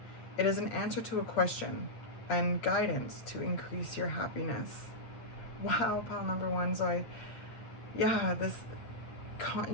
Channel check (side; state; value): right; late; 9.0 ms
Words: It is an answer to a question and guidance to increase your happiness. Wow, pile number one. So